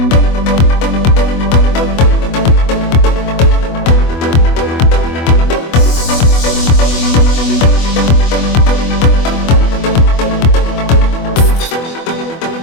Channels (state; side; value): late; right; 24 ms